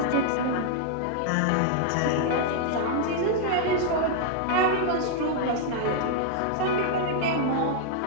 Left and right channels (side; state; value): both; different; correlation 0.00